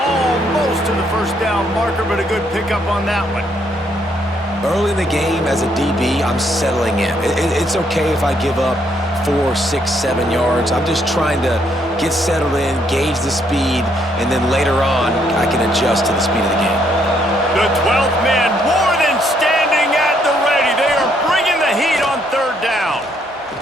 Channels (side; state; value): both; normal; correlation 0.71